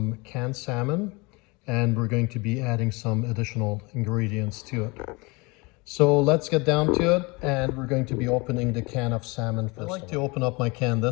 canned salmon, and we're going to be adding some additional ingredients to it. So let's get down to it, and we're going to be opening the can of salmon first. I like to open up my can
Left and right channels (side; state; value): right; quieter; 26.7 dB